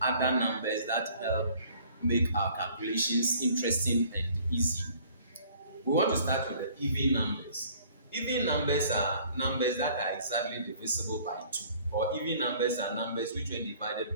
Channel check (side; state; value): both; inverted; correlation -0.55